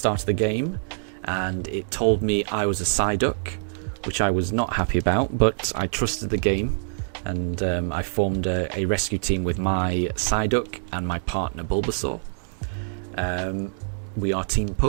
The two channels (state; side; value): silent; left; digital silence